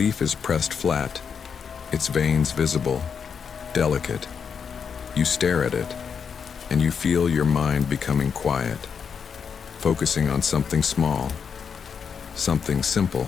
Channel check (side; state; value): right; quieter; 6.6 dB